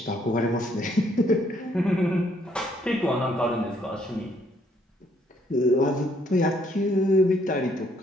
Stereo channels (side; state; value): both; normal; correlation 0.68